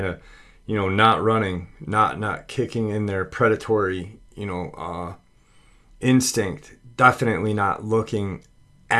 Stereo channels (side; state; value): both; identical; correlation 1.00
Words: of, not running, not kicking in their predatory, instinct, definitely not looking